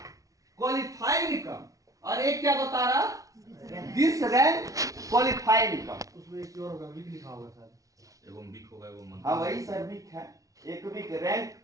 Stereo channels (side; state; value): left; late; 0.17 ms